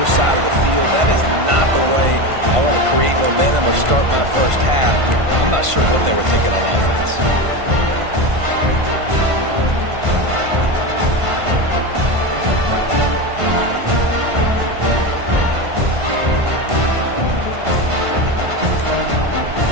side of the field, that is not the way I want to create momentum or start my first half. I'm not sure what they were thinking on offense.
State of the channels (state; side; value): late; left; 1.5 ms